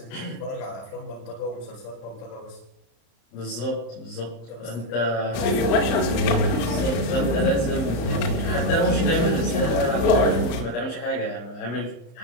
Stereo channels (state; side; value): late; right; 35 ms